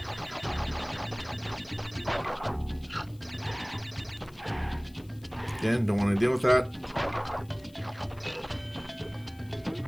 Again, don't want to deal with that.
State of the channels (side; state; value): left; noise; hiss, 26 dB below the sound